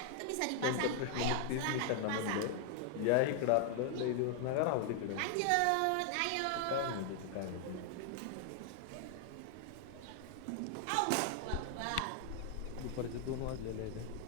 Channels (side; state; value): both; different; correlation 0.00